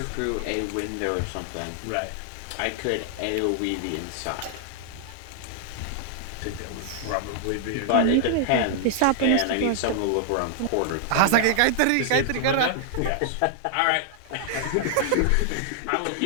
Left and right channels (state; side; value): different; both; correlation -0.01